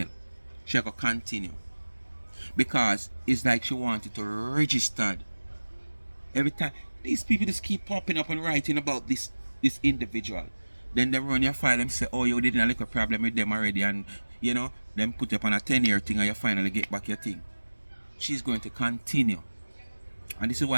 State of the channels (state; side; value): inverted; both; correlation -1.00